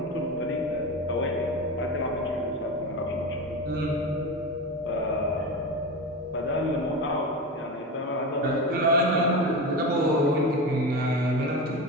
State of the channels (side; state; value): both; normal; correlation 0.23